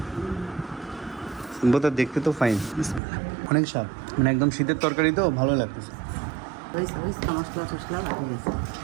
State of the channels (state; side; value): drops out; left; at 3.0 s